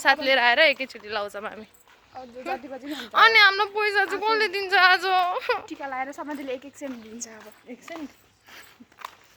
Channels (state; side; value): identical; both; correlation 1.00